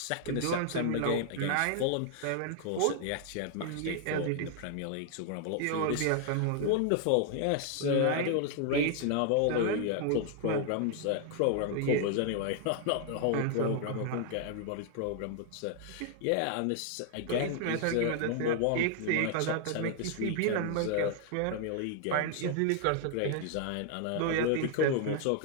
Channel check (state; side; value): different; both; correlation 0.00